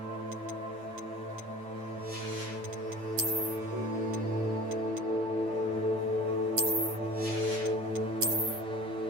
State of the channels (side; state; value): left; late; 8.8 ms